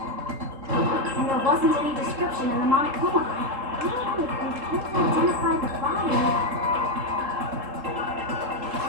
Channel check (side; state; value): left; late; 3.7 ms